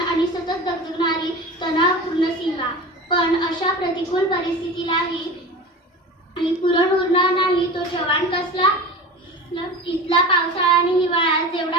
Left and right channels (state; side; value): normal; both; correlation 0.32